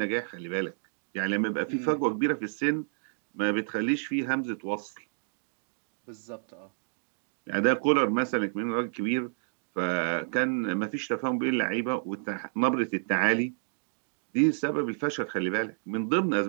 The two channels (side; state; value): left; silent; digital silence